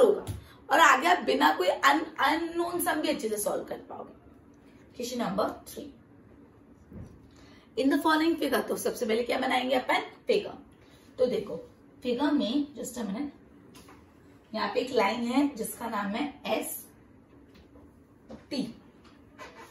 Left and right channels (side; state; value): both; identical; correlation 1.00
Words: और आगे आप बिना कोई अननोन सम भी अच्छे से सॉल्व कर पाओगे। Question number 3। In the following figure, तो सबसे पहले क्या बनाएंगे अपन? फिगर। तो देखो फिगर में, जस्ट अ मिनट, यहाँ पे एक लाइन है जिसका नाम है ST।